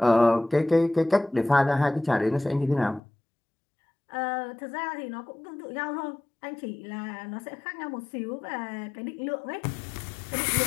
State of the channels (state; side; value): drops out; right; at 3.0 s